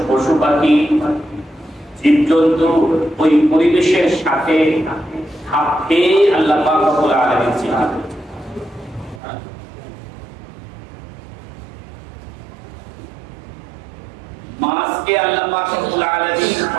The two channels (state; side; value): drops out; left; at 9.2 s